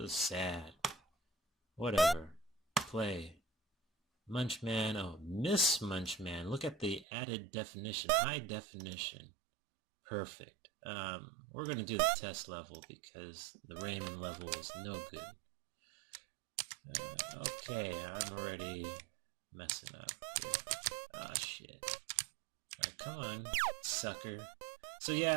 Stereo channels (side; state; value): left; drops out; at 7.1 s